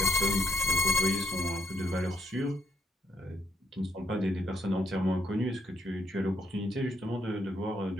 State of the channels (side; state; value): both; normal; correlation 0.73